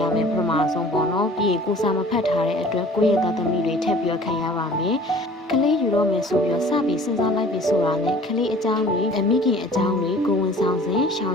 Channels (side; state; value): both; normal; correlation 0.48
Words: မယ်ပထမဆုံးပေါ့နော်ပြီးရင်ကိုစာမဖတ်ထားတဲ့အတွက်ကိုယ့်ရဲ့သားသမီးတွေထပ်ပြီးခံရပါမယ်ကလေးယူတော့မယ်ဆိုပြီးတော့စပြီးစဉ်းစားလိုက်ပြီဆိုတာနဲ့ကလေးအကြောင်းတွေအမိခင်အကြောင်းတွေကိုဝန်ဆောင်စဉ်ရှောင်